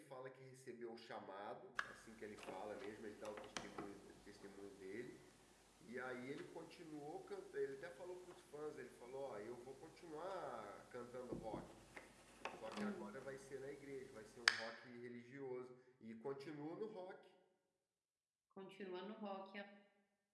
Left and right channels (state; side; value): identical; both; correlation 1.00